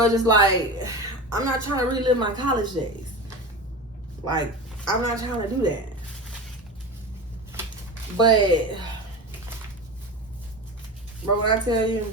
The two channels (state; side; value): normal; both; correlation 0.27